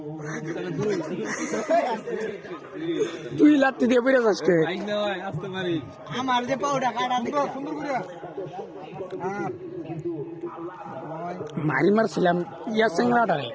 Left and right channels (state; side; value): identical; both; correlation 1.00